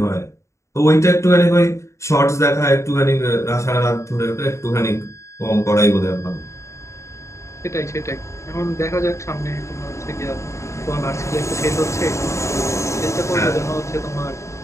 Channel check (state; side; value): late; right; 0.14 ms